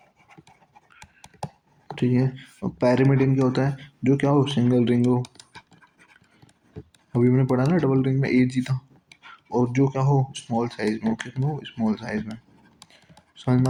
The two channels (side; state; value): both; identical; correlation 1.00